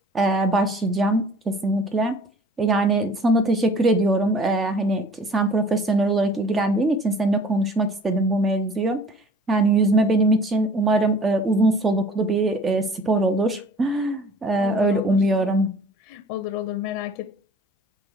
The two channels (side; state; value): both; normal; correlation 0.49